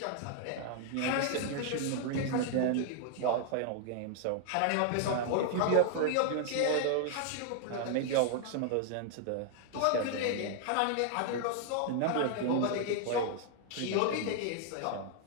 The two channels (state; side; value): different; both; correlation 0.00